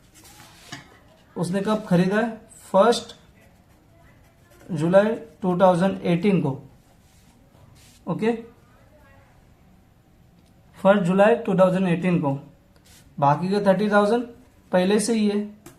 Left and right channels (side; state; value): both; identical; correlation 1.00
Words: उसने कब खरीदा है? 1 जुलाई 2018 को। ओके, 1 जुलाई 2018 को। बाकी का 30,000 पहले से ही है।